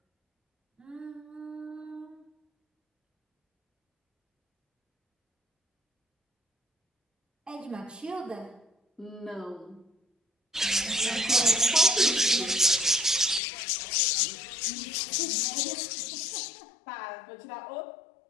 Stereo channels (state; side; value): drops out; right; at 13.4 s